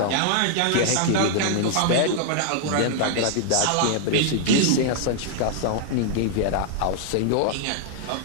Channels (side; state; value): both; different; correlation -0.01